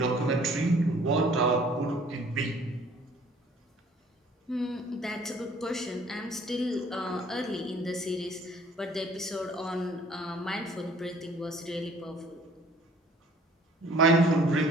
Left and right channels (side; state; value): both; normal; correlation 0.55